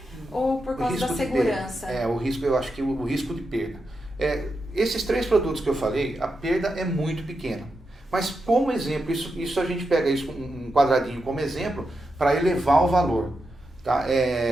ou por causa da segurança? O risco, eu acho que o risco de perda. Esses 3 produtos que eu falei, a perda é muito pequena. Mas como exemplo, isso a gente pega isso um quadradinho como exemplo para elevar o valor. Tá?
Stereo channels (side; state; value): both; normal; correlation 0.87